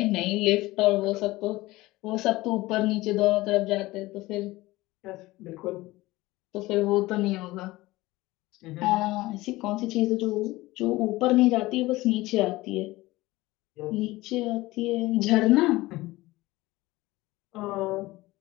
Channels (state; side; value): quieter; right; 19.2 dB